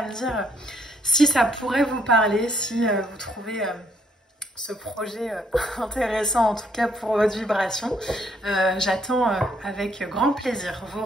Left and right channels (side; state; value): both; normal; correlation 0.70